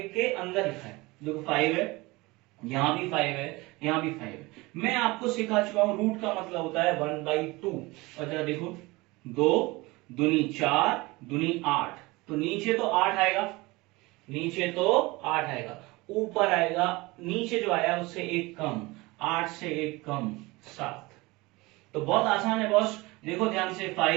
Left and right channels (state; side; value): quieter; left; 22.6 dB